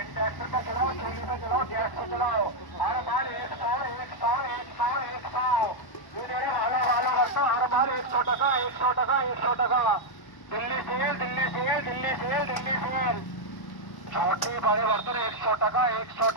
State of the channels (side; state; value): right; late; 1.0 ms